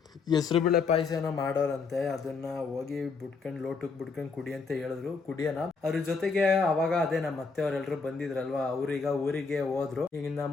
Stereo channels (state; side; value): quieter; right; 4.8 dB